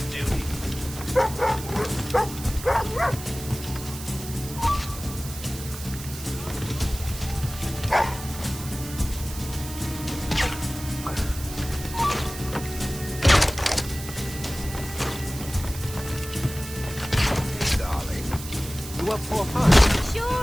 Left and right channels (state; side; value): noise; right; hiss, 12 dB below the sound